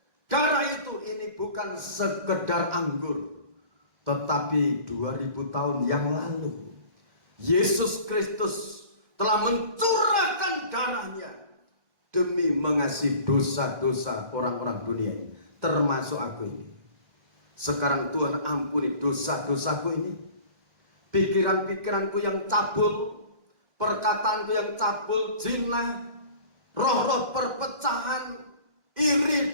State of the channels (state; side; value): late; left; 1.9 ms